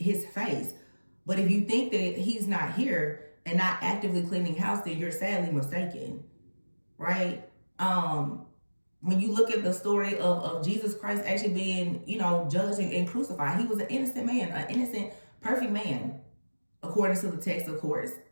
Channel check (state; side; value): inverted; both; correlation -1.00